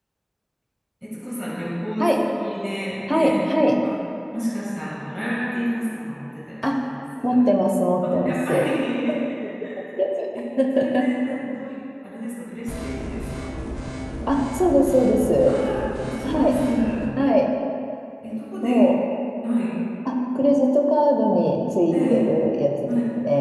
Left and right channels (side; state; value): both; identical; correlation 1.00